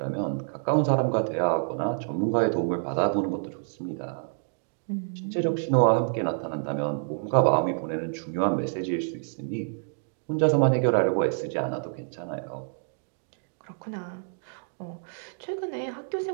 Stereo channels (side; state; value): left; silent; digital silence